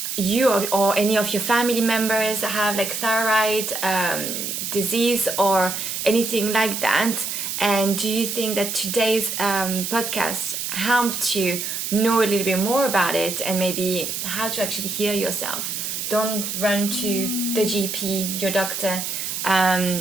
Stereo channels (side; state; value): right; noise; hiss, 4 dB below the sound